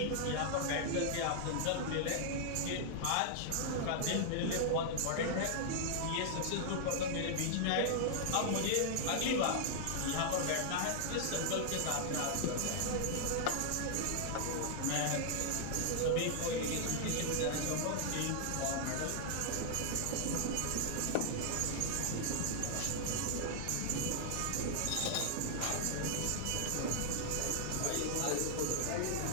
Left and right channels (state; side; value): different; both; correlation -0.01